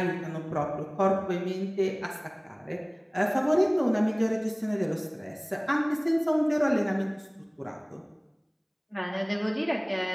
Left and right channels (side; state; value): both; identical; correlation 1.00